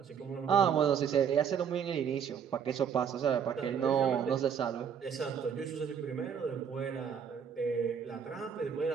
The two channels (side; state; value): left; quieter; 7.6 dB